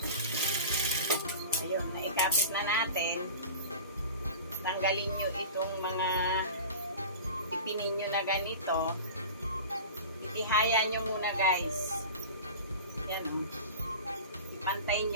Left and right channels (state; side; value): inverted; both; correlation -0.34